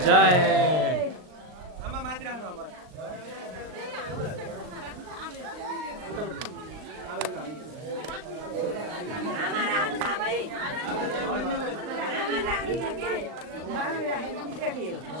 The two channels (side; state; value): left; late; 39 ms